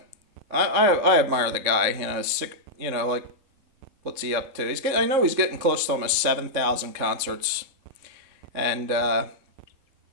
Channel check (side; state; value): left; late; 3.6 ms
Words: I admire the guy. Sick. Like, what's he up to? I know he's getting close to almost 7,000 concerts, and I